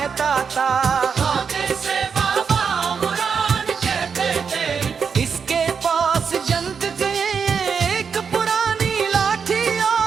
था, से बाबा मुराद कहते थे। इसके पास जंग की एक पुरानी लाठी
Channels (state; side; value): quieter; left; 6.2 dB